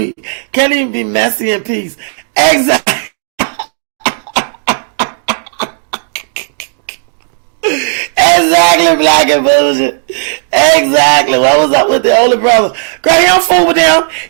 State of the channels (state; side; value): silent; left; digital silence